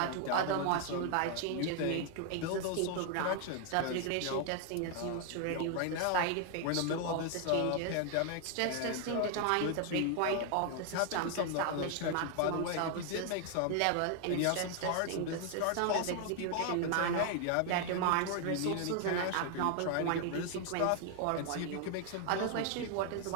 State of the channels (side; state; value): both; different; correlation 0.00